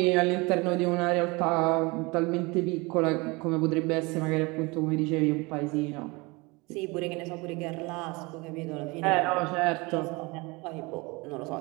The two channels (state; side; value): quieter; left; 25.7 dB